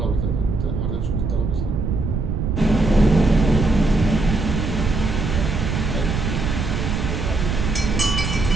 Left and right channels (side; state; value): right; noise; rumble, 2 dB below the sound